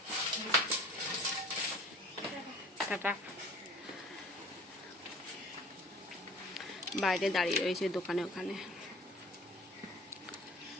টাটা। বাইরে দাঁড়িয়ে রয়েছে দোকানে, ওখানে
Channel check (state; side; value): normal; both; correlation 0.47